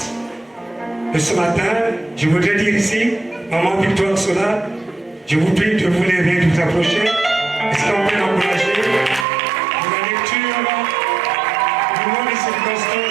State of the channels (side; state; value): left; drops out; at 9.2 s